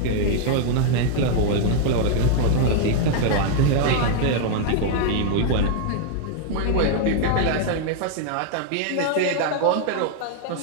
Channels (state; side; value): different; both; correlation 0.00